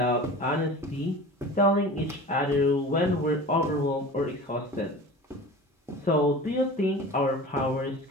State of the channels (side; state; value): both; normal; correlation 0.36